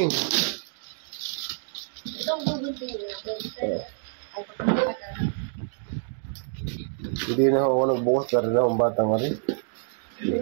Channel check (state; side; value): silent; left; digital silence